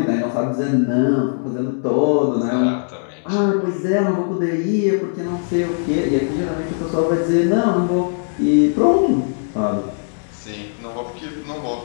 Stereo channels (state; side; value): silent; right; digital silence